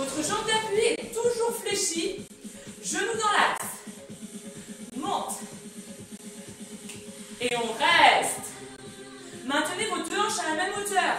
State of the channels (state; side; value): identical; both; correlation 1.00